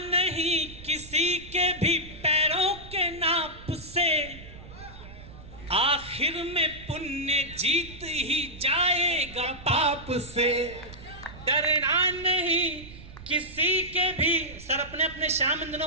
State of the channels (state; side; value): noise; right; rumble, 16 dB below the sound